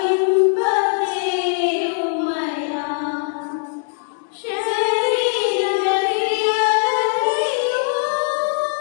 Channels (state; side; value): silent; right; digital silence